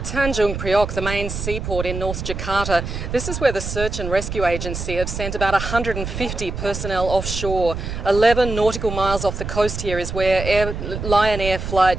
Tanjung Priok, the main seaport in North Jakarta. This is where the Search and Rescue Agency have sent about 150 personnel offshore. 11 nautical miles off the coast here is where Lion Air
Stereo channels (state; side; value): noise; right; rumble, 6 dB below the sound